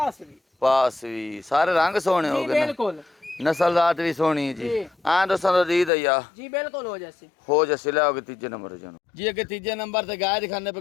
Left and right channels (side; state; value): right; drops out; at 5.9 s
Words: भी पास भी सारे रंग सोने हो जी गए ना। बिल्कुल नस्ल जात भी सोनी है जी जी। हाँ दोस्तों तो दी दैया जी बिल्कुल हो जैसे हो जैसे ले आओगे तीजे नंबर जानो जी अगे तीजे नंबर ते गाय दिखाने पे